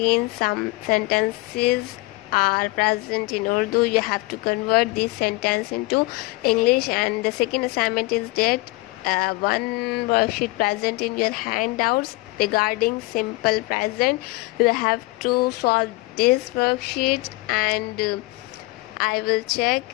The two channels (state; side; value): quieter; right; 22.4 dB